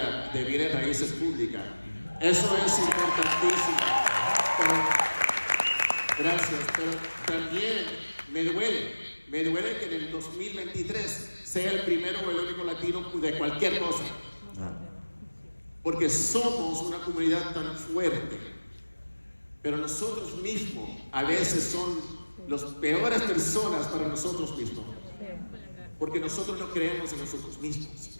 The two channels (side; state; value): both; inverted; correlation -1.00